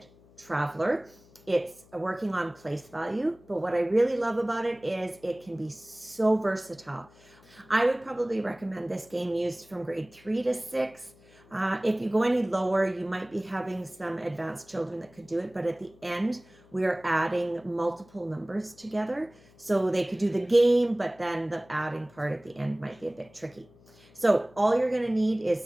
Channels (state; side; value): noise; left; hum, 27 dB below the sound